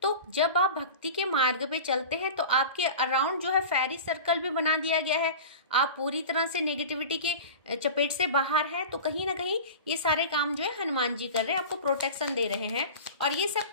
तो जब आप भक्ति के मार्ग पे चलते हैं तो आपके अराउंड जो है फेरी सर्कल भी बना दिया गया है, आप पूरी तरह से नेगेटिविटी के चपेट से बाहर हैं। तो कहीं ना कहीं ये सारे काम जो है हनुमान जी कर रहे हैं, आपको प्रोटेक्शन दे रहे हैं। और ये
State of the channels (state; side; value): inverted; both; correlation -0.34